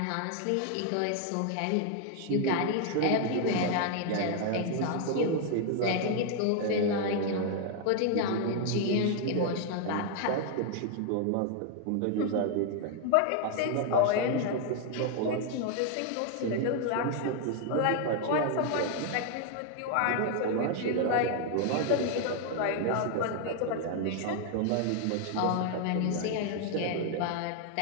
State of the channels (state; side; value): different; both; correlation 0.01